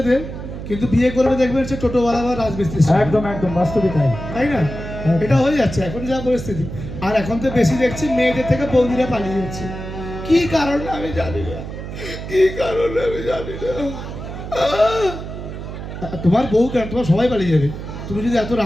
কিন্তু বিয়ে করবে দেখবেন সে টোটোওয়ালা বা রাজমিস্ত্রি, একদম একদম বাস্তবিক তাই। তাই না? এটা হয়ে যাচ্ছে এখন যা পরিস্থিতি। আর এখন তো বেশি দেখছি মেয়েদের থেকে বৌদিরা পালিয়ে যাচ্ছে। কি কারণ আমি জানি না, কি কারণ আমি জানি না। তোমার বউ কেন, তোমার সবাই পালিয়ে যাবে। তুমি যদি এত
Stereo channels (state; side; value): noise; right; hum, 9 dB below the sound